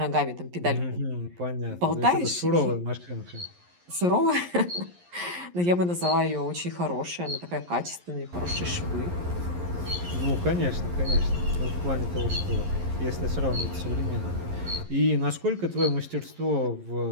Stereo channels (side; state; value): left; late; 11 ms